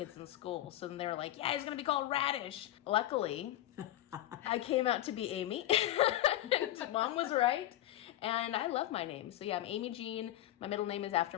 in school. So then they were like, yeah, he's going to be called Radish. Luckily, I came out to be Amy. And mom was right. And I love my name. So yeah, I'm Amy Jean. My middle name is after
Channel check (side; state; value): right; quieter; 13.9 dB